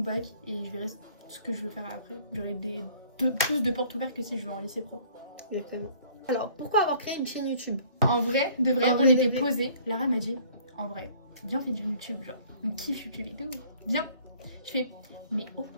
et je verrai ce que je veux faire après. J'aurai plus de portes ouvertes que si je vais en lycée pro. Exactement. Alors, pourquoi avoir créé une chaîne YouTube? En vrai, de vrai, En on vrai, était de vrai. posés. Lara m'a dit, en vrai, viens, on fait du YouTube. Genre, on kiffe YouTube et tout. Viens. Je fais, mais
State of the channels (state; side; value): inverted; both; correlation -0.56